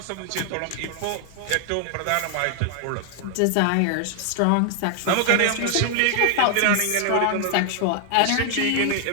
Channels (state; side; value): different; both; correlation 0.00